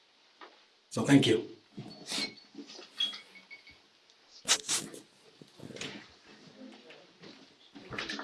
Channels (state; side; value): identical; both; correlation 1.00